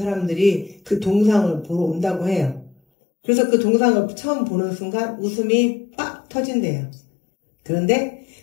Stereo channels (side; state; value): right; drops out; at 2.8 s